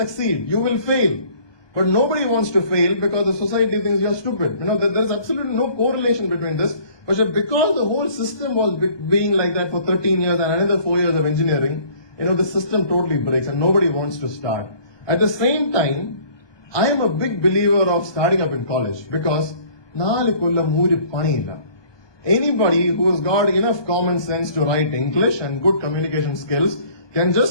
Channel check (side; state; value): right; late; 1.2 ms